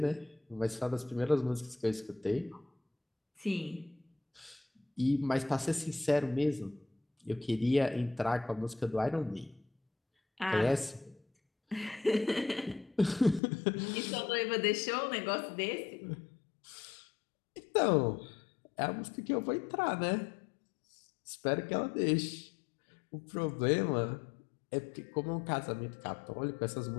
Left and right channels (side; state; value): right; drops out; at 13.4 s